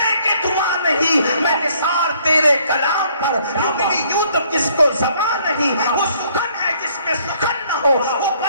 کہ دھواں نہیں۔ میں نثار تیرے کلام پر، میری یوں تو کس کو زبان نہیں، وہ سخن ہے جس میں سخن نہ ہو، وہ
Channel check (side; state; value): both; inverted; correlation -0.64